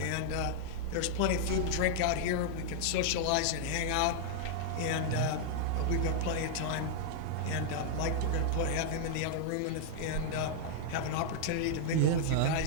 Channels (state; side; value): different; both; correlation -0.01